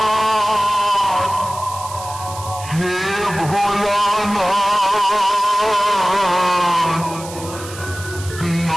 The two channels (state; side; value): noise; right; hiss, 14 dB below the sound